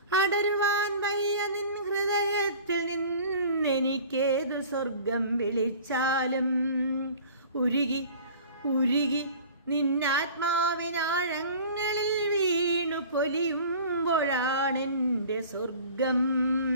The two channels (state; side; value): inverted; both; correlation -0.43